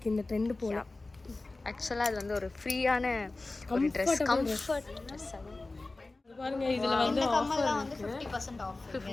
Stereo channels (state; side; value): quieter; right; 3.2 dB